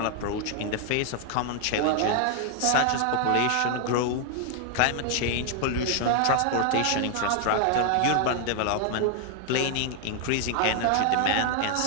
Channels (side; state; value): both; different; correlation 0.00